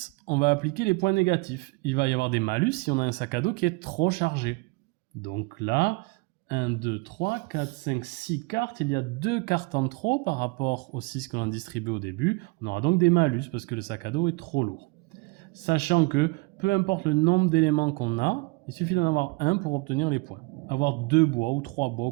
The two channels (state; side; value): quieter; left; 27.1 dB